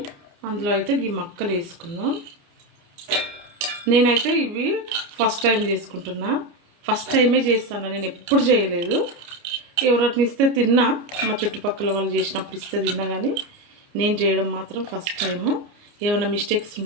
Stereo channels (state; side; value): late; left; 29 ms